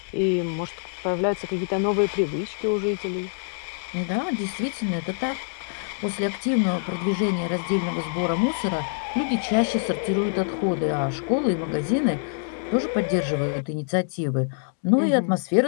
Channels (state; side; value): silent; right; digital silence